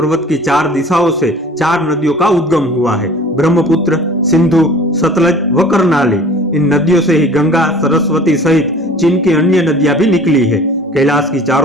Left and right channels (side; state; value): both; normal; correlation 0.46